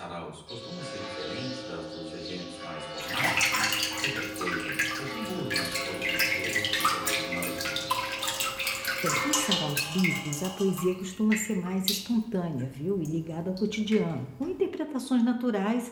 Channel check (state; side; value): identical; both; correlation 1.00